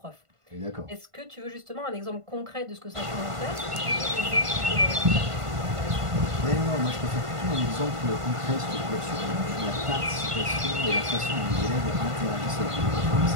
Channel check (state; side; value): late; left; 1.5 ms